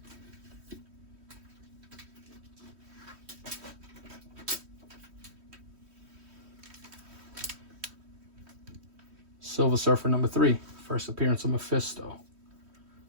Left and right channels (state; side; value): late; left; 3.1 ms